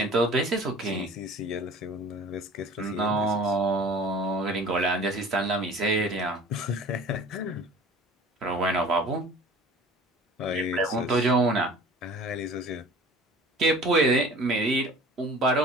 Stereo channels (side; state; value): both; normal; correlation 0.45